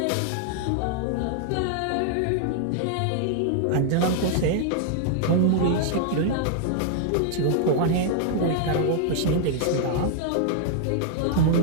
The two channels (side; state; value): both; different; correlation 0.00